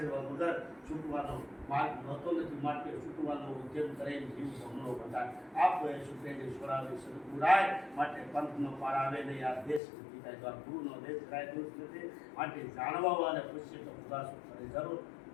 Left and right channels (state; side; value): drops out; right; at 9.8 s